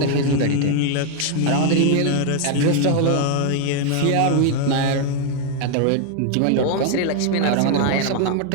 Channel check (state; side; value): different; both; correlation 0.00